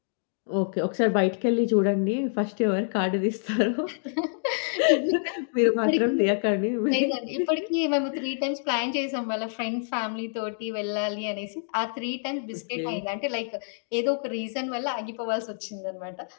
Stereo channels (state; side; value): silent; right; digital silence